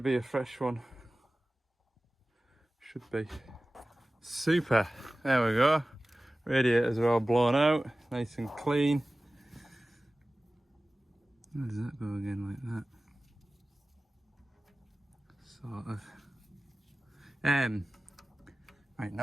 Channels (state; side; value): normal; both; correlation 0.97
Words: be a fresh one. Should be. Super. There we go. Radiators are all blown out, nice and clean. How does that go again like that? Sort of. Right,